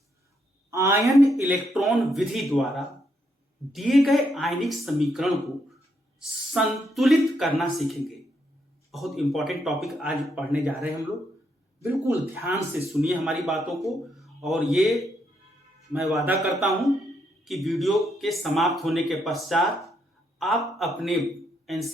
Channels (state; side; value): normal; both; correlation 0.77